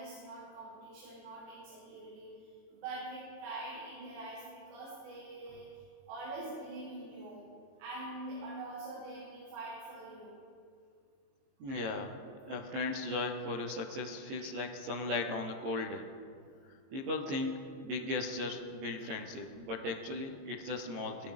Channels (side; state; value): left; late; 22 ms